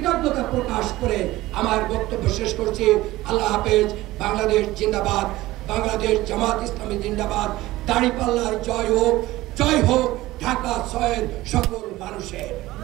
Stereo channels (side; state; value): left; quieter; 17.5 dB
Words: প্রকাশ করে আমার বক্তব্য শেষ করছি। আল্লাহ হাফেজ। বাংলাদেশ জিন্দাবাদ। বাংলাদেশ জামাত ইসলামী জিন্দাবাদ। দাঁড়িপাল্লার জয় হোক, জয় হোক ঢাকা ৬-এর সকল মানুষের।